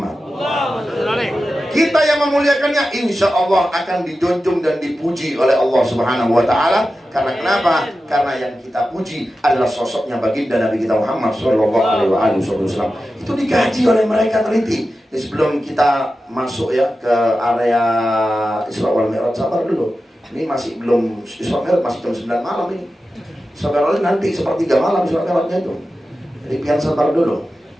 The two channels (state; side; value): normal; both; correlation 0.93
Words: Kita yang memuliakannya insya Allah akan dijunjung dan dipuji oleh Allah Subhanahu wa ta'ala. Karena kenapa? Karena yang kita puji adalah sosoknya baginda Nabi kita Muhammad sallallahu alaihi wasallam. Itu dikaji oleh mereka, teliti. Jadi sebelum kita masuk ya ke area Isra wal Mi'raj, sabar dulu. Ini masih belum Isra Mi'raj, masih jam 9 malam ini. Isra nanti sepertiga malam Isra Mi'rajnya itu. Jadi biar sabar dulu.